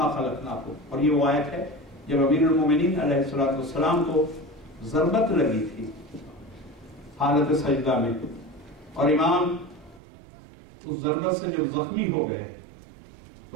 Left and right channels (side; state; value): left; drops out; at 10.0 s